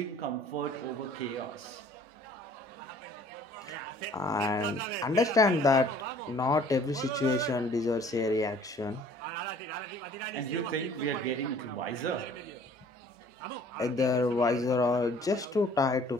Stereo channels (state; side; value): normal; both; correlation 0.54